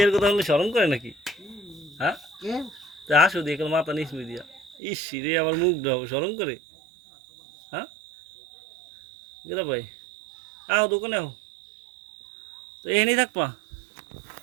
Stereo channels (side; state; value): left; drops out; at 4.8 s